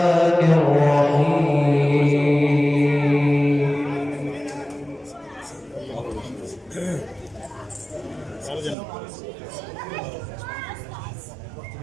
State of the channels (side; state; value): left; drops out; at 8.8 s